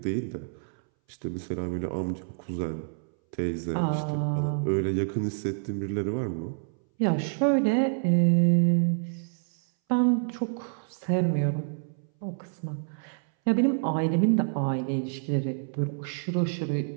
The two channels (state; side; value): silent; left; 59 dB below the other